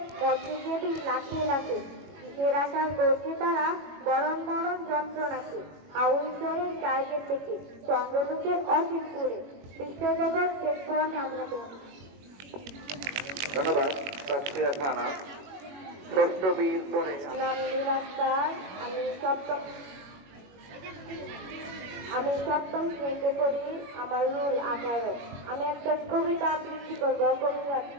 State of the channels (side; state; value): left; late; 21 ms